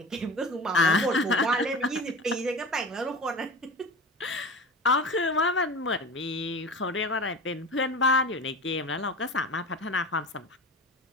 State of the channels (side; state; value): both; normal; correlation 0.33